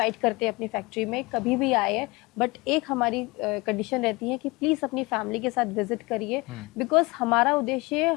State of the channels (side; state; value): right; quieter; 24.2 dB